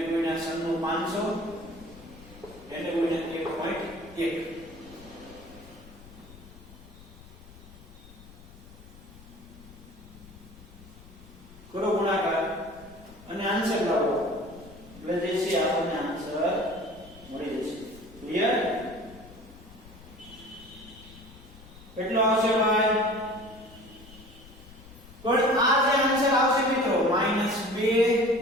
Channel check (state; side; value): noise; left; rumble, 20 dB below the sound